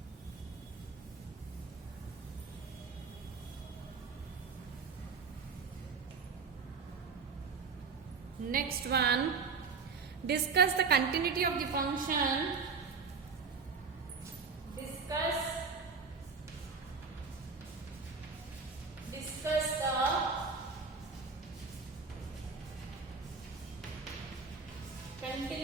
Next one, discuss the continuity of the function. Discuss the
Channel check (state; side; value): quieter; left; 5.0 dB